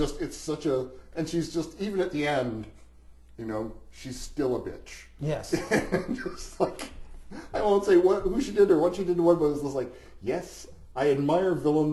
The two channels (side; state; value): both; identical; correlation 1.00